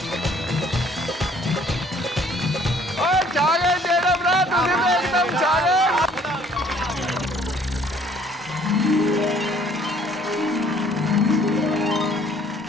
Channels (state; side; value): normal; both; correlation 0.58